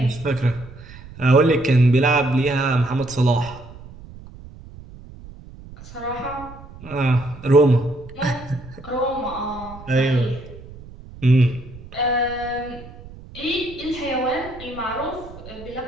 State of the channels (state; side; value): noise; right; rumble, 17 dB below the sound